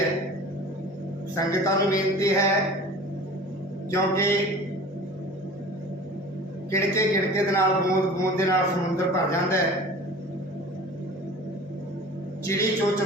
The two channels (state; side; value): normal; both; correlation 0.41